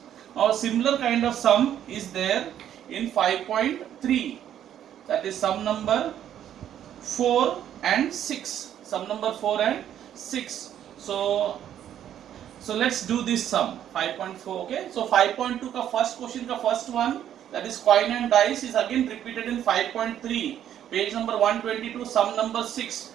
Now, a similar kind of sum is there in 5.3. That is sum number 4 and 6. Sum number 4 and 6. So let's do this sum 5.4. Okay, so 5.2 का first question का first one, that is coin and dice, is again repeated in 5.3, page number 122, sum number 6.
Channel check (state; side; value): quieter; left; 10.4 dB